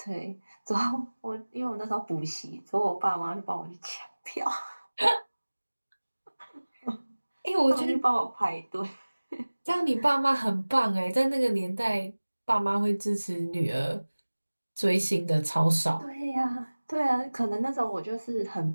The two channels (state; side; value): inverted; both; correlation -1.00